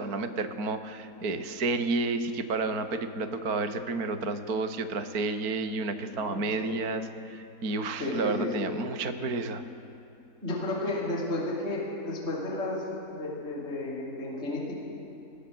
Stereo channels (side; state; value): left; late; 4.4 ms